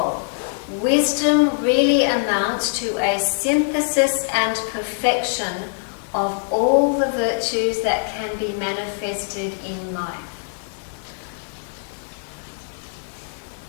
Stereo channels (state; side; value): silent; right; digital silence